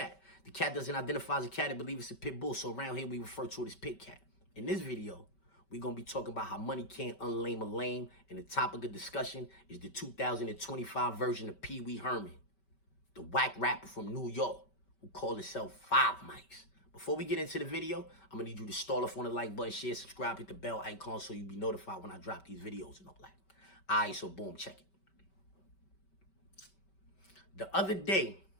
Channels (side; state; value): right; late; 5.2 ms